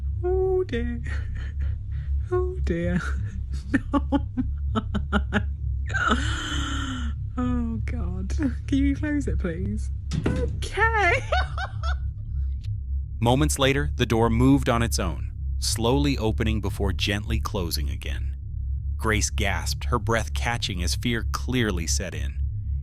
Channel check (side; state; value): both; identical; correlation 1.00